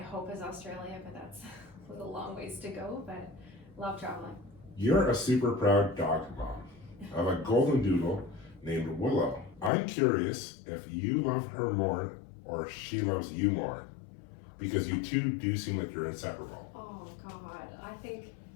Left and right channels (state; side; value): drops out; right; at 9.7 s